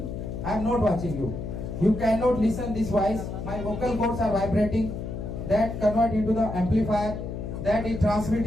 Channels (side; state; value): left; noise; hum, 6 dB below the sound